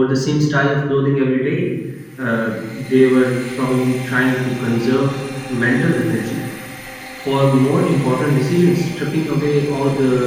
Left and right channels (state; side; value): identical; both; correlation 1.00